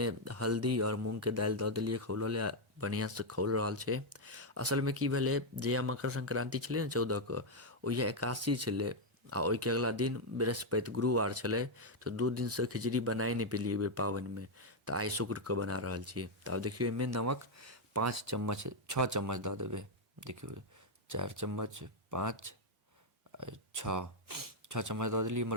हल्दी और मूंग के दालि दऽ देलिए खौलले, बढ़िया से खौल रहल छै। असल में की भेलै, जहिया मकर संक्रांति छलै ने 14 के, ओहिया एकादशी छलै आ ओहि के अगला दिन बृहस्पति गुरुवार छलै। तो 2 दिन से खिचड़ी बनाए नहीं पेलिए बेर पावन में। तो आई शुक्र के बना रहल छी। तो अब देखियो, एहिमे नमक 5 चम्मच 6 चम्मच दऽ देबै। देखियो, 4 चम्मच 5 6 चम्मच दऽ देलिए।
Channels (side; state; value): both; normal; correlation 0.00